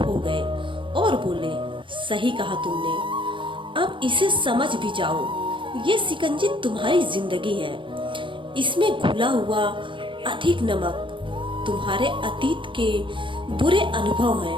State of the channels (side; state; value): left; late; 0.24 ms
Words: गए और बोले, सही कहा तुमने, अब इसे समझ भी जाओ। ये शिकंजी तुम्हारी जिंदगी है। इसमें घुला हुआ अधिक नमक तुम्हारे अतीत के बुरे अनुभव